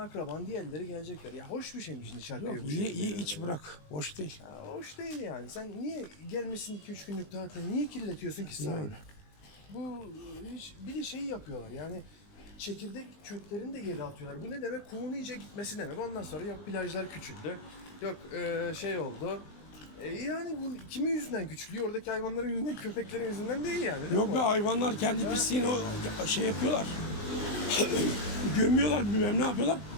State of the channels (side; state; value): right; late; 19 ms